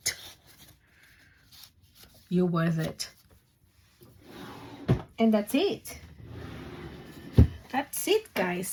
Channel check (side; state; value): both; identical; correlation 1.00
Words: You're worth it. And that's it. That's it,